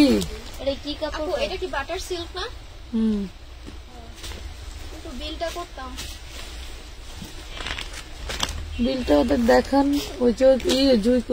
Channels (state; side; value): identical; both; correlation 1.00